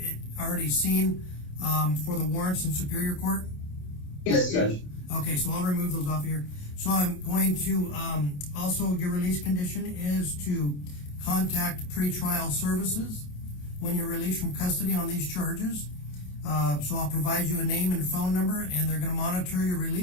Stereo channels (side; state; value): right; late; 28 ms